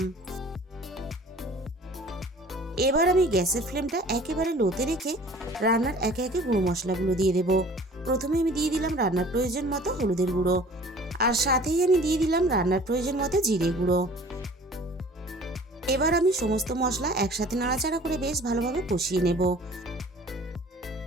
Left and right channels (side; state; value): both; normal; correlation 0.48